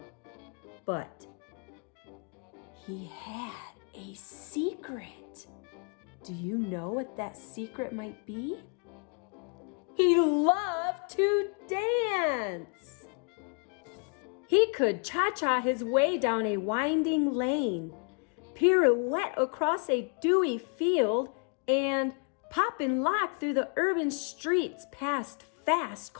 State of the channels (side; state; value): right; quieter; 38.7 dB